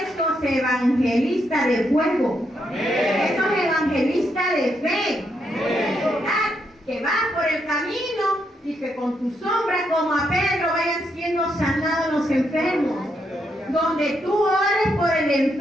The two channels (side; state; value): both; normal; correlation 0.79